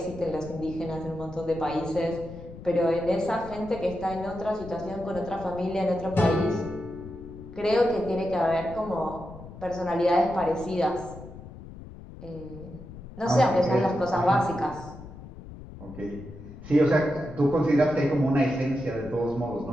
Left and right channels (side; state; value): left; noise; rumble, 15 dB below the sound